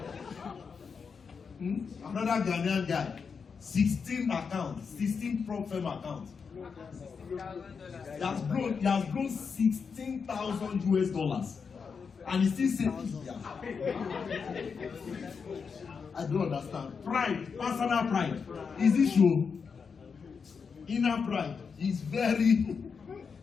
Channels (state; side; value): quieter; right; 5.7 dB